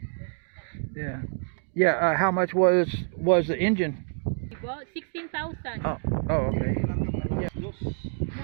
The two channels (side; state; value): left; silent; 60 dB below the other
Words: 30,000. Yeah. How much was the engine? Well, 16,000. Oh, okay. Yeah.